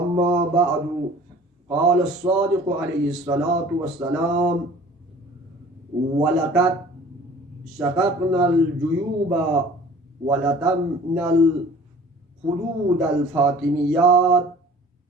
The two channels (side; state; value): both; normal; correlation 0.47